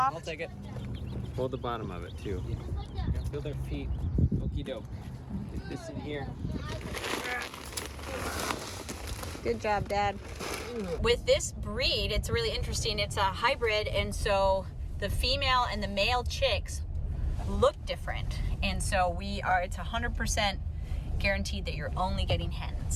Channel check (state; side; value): identical; both; correlation 1.00